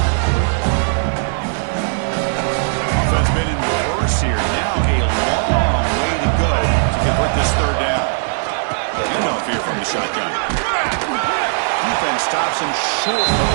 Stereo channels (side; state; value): left; silent; digital silence